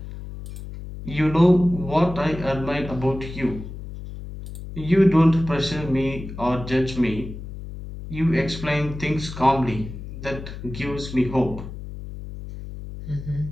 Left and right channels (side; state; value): left; noise; hum, 11 dB below the sound